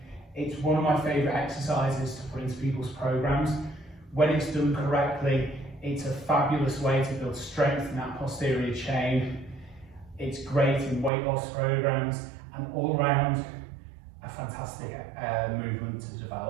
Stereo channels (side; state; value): left; drops out; at 11.1 s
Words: it's one of my favourite exercises to put into people's programs. When it's done correctly, it's a fabulous way to build strength in that posterior chain. It's great in weight loss programs, and all around a fantastic movement to